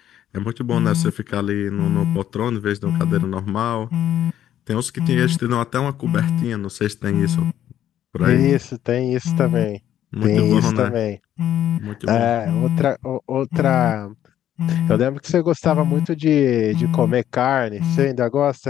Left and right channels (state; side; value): quieter; right; 11.2 dB